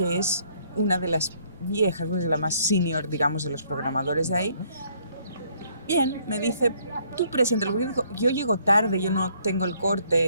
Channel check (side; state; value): both; inverted; correlation -0.65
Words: es una de las viejas, pues la más senior, digamos, de los programadores de ahí. Bien, me dice, tú preséntalo, porque yo llego tarde, yo no tengo el